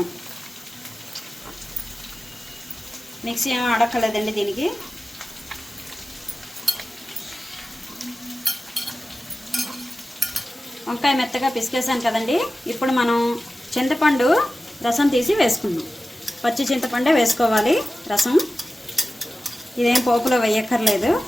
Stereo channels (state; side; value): normal; both; correlation 0.95